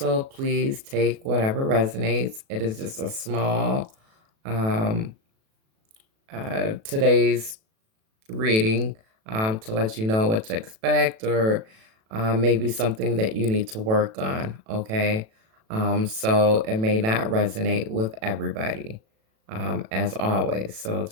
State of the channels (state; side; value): late; left; 37 ms